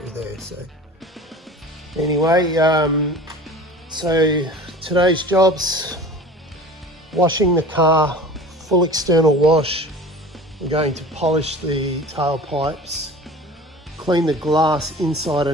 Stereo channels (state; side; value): normal; both; correlation 0.40